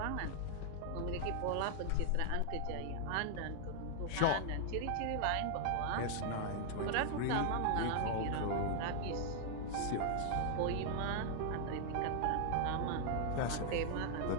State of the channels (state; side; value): different; both; correlation 0.00